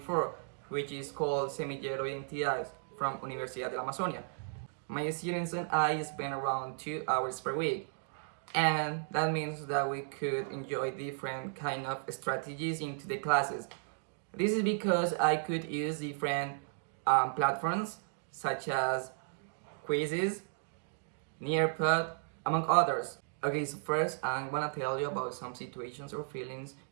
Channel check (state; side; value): silent; left; digital silence